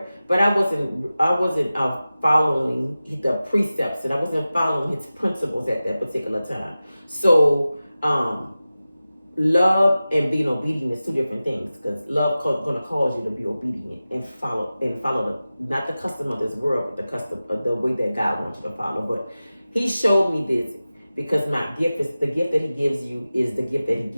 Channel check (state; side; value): inverted; both; correlation -0.95